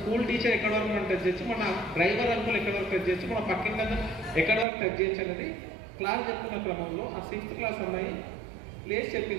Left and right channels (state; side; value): drops out; left; at 4.7 s